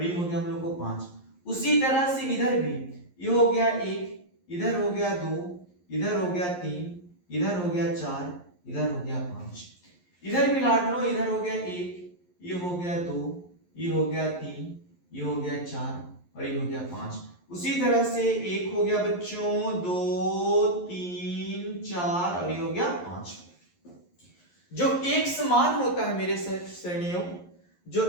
ये हो गया हम लोग को 5। उसी तरह से इधर भी ये हो गया 1, इधर हो गया 2, इधर हो गया 3, इधर हो गया 4, इधर हो गया 5। इधर भी लाडलो इधर हो गया 1, ये हो गया 2, ये हो गया 3, ये हो गया 4 और ये हो गया 5। उसी तरह से 1 हो गया बच्चों, 2, 3, 4 और ये हो गया 5। जो x मान होता है मेरे श्रेणियों, जो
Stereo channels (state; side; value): late; right; 11 ms